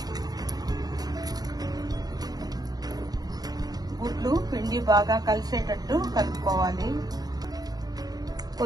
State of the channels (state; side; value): late; left; 0.19 ms